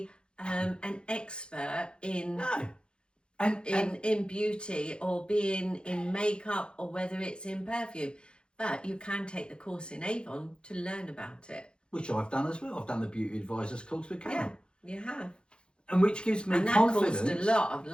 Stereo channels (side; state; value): right; late; 0.053 ms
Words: an expert in No. in beauty or being in makeup or whether it's in perfume. But you can take the course in Avon to learn about it. Which I've done as well. I've done the beauty advisors course with Karen. Yeah, you have. And which gives me and that confidence. caused a lot of